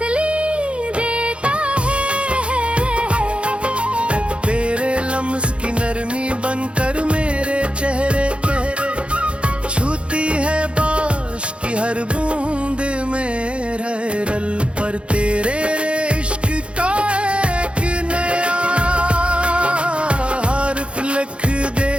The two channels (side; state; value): left; late; 0.059 ms